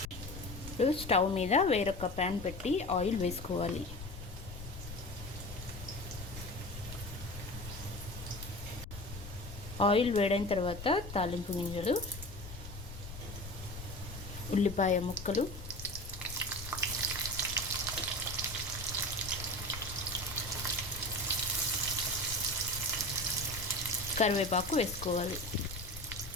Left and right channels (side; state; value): left; noise; rumble, 11 dB below the sound